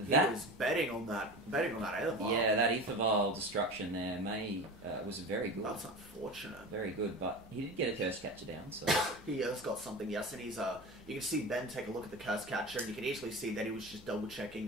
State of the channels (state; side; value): noise; right; hum, 24 dB below the sound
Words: that he was betting on that Aethervile. Yeah, that Aethervile destruction there was very good. That's unfortunate. Very good, but he did get a Curse Catcher down, so he has got something. Yes, and he's you can see Ben take a look at the Curse Catcher, and you can easily see that he was just double checking